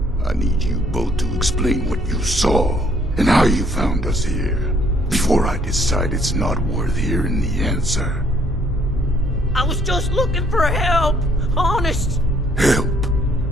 I need you both to explain what you saw and how you found us here, before I decide it's not worth hearing the answer. I was just looking for help, honest. Help?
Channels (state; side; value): normal; both; correlation 0.64